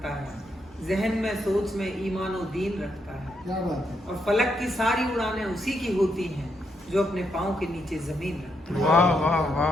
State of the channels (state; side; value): normal; both; correlation 0.79